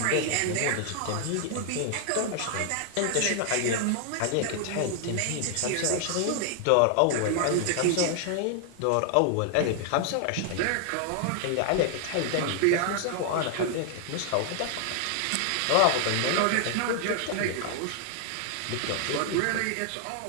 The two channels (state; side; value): different; both; correlation 0.00